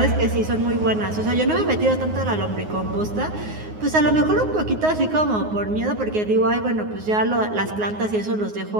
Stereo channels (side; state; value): left; late; 9.5 ms